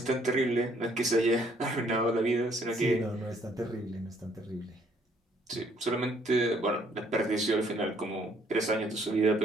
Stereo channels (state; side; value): normal; both; correlation 0.65